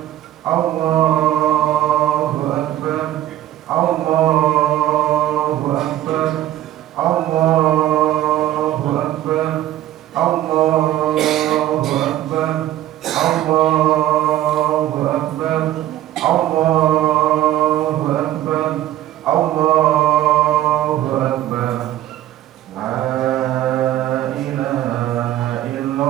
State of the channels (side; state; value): left; quieter; 13.3 dB